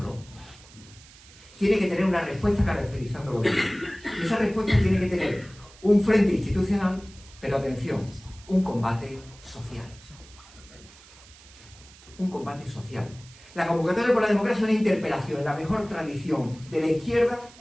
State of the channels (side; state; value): right; noise; hiss, 22 dB below the sound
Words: tiene que tener una respuesta caracterizándolo bien. Y esa respuesta tiene que tener un frente institucional, pero atención, un combate social. Un combate social. La convocatoria por la democracia es una interpelación en la mejor tradición de la izquierda